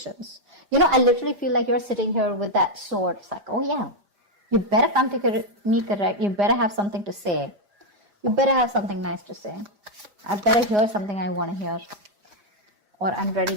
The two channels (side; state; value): left; late; 5.0 ms